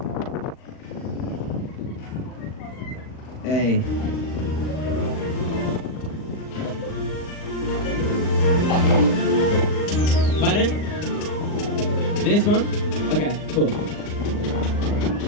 Hey. Pardon? This one? Okay, cool.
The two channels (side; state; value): right; late; 39 ms